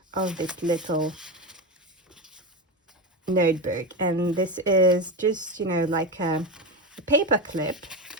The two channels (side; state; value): both; normal; correlation 0.18